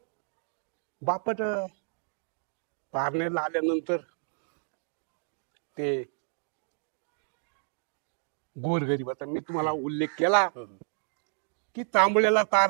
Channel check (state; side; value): silent; left; 57 dB below the other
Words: बापट पारनेरला आल्यानंतर ते गोरगरीबाचा मी तुम्हाला उल्लेख केला की तांबड्याला तार